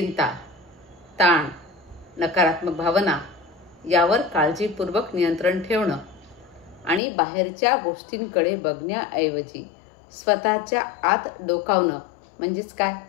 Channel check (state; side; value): drops out; right; at 7.0 s